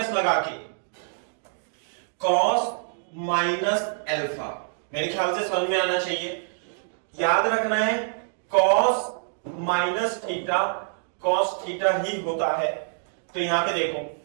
लगा के कॉस माइनस अल्फा। मेरे ख्याल से समझ में आना चाहिए, याद रखना है cos minus theta cos theta ही होता है। तो यहां पे देखो,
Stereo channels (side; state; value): left; silent; digital silence